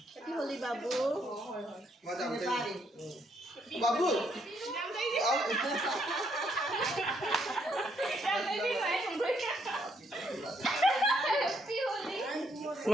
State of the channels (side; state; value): both; normal; correlation 0.73